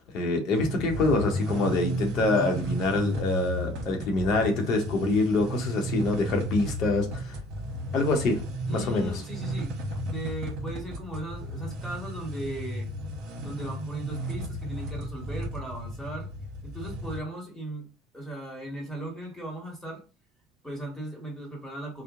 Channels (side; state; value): both; normal; correlation 0.55